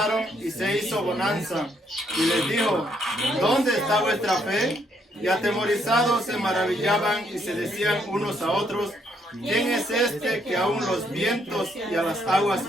y se hizo bonanza. Y les dijo: ¿dónde está vuestra fe? Y atemorizados se maravillaban y se decían unos a otros: ¿quién es este que aún los vientos y a las aguas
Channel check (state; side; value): normal; both; correlation 0.71